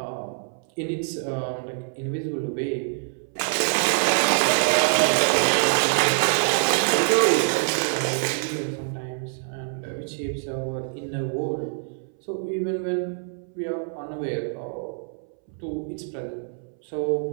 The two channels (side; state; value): left; silent; 62 dB below the other